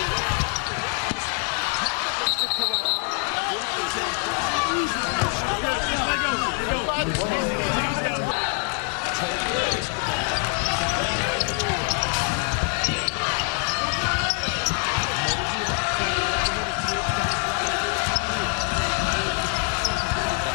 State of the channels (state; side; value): quieter; right; 38.2 dB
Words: hard off the glass. Tablet looks to corral. We'll have a jump ball, and we'll stay down here with Arkansas Little Rock. Trojan basketball down by 4. Mosey out front, yet to hit a 3. He's got 24 on the year. South